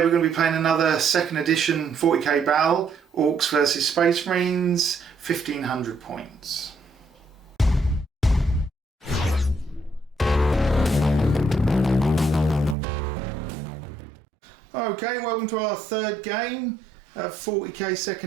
we're going to be playing another second edition 40k battle, Orks versus Space Marines, 1500 points. Okay, welcome to our third game, 40k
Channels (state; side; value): drops out; left; at 12.8 s